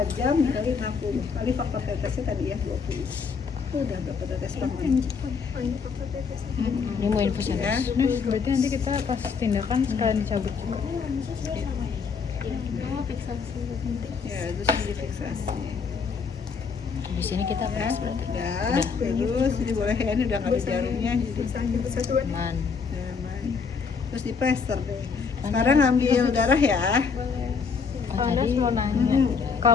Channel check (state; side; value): quieter; right; 5.6 dB